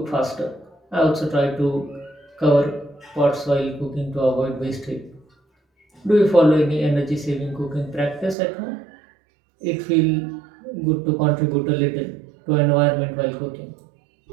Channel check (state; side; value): drops out; left; at 8.3 s